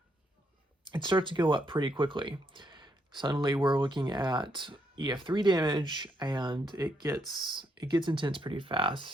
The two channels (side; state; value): both; normal; correlation 0.76